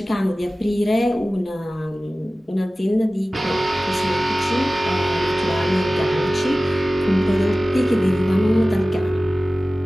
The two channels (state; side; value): normal; both; correlation 0.96